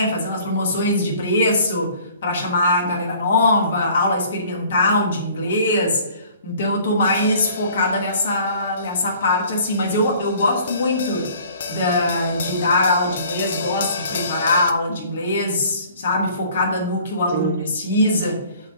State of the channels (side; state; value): both; inverted; correlation -0.53